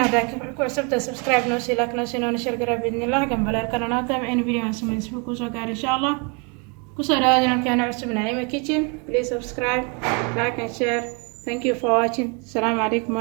hada ku cusubta subscribe noo sii like noo sii noo sheergaray باذن الله gambalaalkana naata in video aan sameeyo isku ku soo gaar insha Allah ku soo dhawaada jankeena cusub Naima Kitchen please subscribe like and share thank you for watching assalamu alaykum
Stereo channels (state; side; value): quieter; left; 34.0 dB